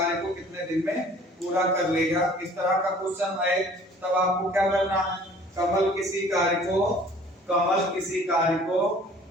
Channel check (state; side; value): normal; both; correlation 0.52